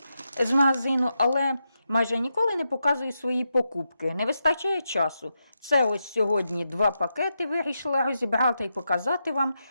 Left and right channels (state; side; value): inverted; both; correlation -0.86